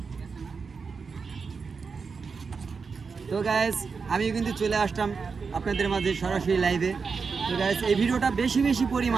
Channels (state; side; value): quieter; left; 5.2 dB